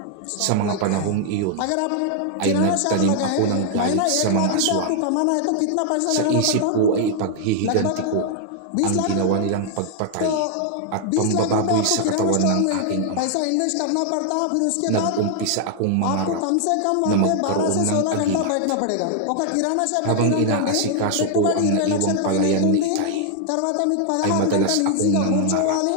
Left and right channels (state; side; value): different; both; correlation 0.00